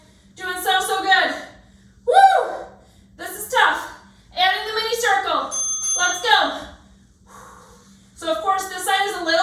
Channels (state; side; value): identical; both; correlation 1.00